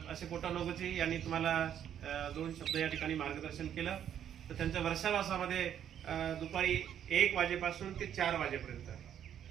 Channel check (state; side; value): quieter; left; 9.7 dB